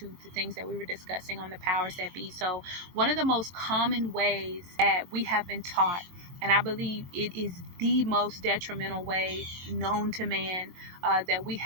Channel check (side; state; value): left; late; 23 ms